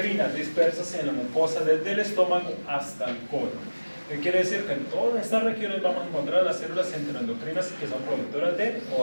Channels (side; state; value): both; inverted; correlation -1.00